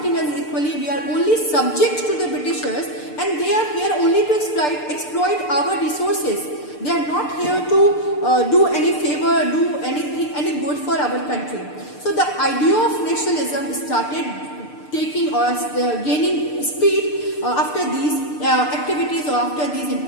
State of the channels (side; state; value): right; late; 6.7 ms